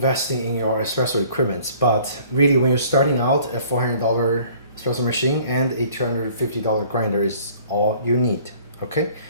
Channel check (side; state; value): both; inverted; correlation -0.54